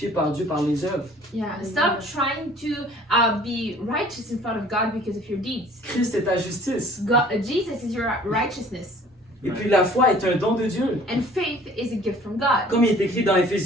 par Dieu par les œuvres. Yeah, stop trying to be righteous in front of God because of your deeds. Christ est ta justice. Jesus is your righteousness, Et puis la foi est un don de Dieu. and faith is a gift from God. Comme il est écrit dans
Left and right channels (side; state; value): both; normal; correlation 0.52